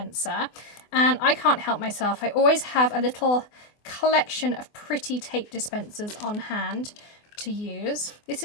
And I can't help myself. I always have a little collection of pretty tape dispensers on hand to use. This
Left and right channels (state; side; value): late; right; 24 ms